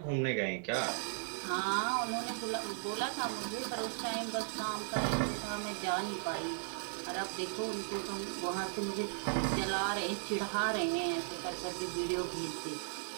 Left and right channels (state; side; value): silent; left; digital silence